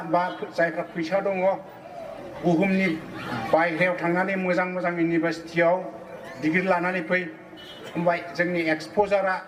बा जायफ्रा फैसा दङ बुहुमनि बायहेरायाव थांनानै मोजां मोजां इउनिभार्सिटियाव डिग्री लानानै फै, होमबा जोंनि एक्सप'जारा,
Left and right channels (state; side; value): identical; both; correlation 1.00